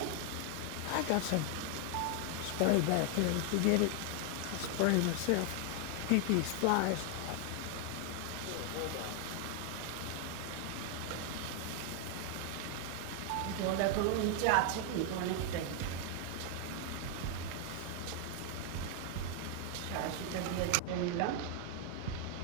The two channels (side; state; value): both; different; correlation 0.00